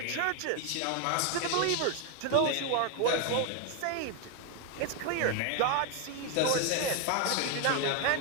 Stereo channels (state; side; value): different; both; correlation 0.01